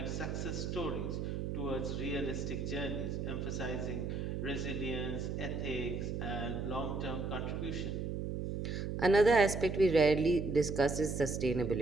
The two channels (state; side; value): noise; right; hum, 3 dB below the sound